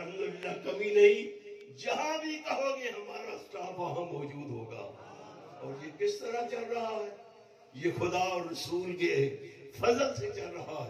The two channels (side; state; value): both; identical; correlation 1.00